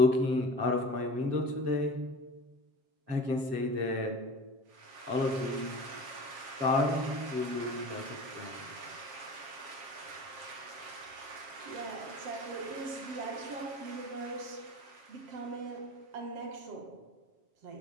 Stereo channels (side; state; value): left; late; 7.5 ms